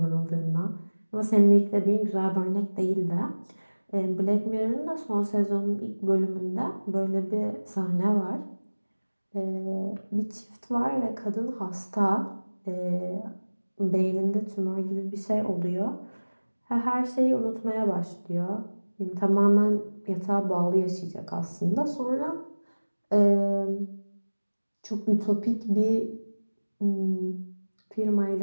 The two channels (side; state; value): both; inverted; correlation -1.00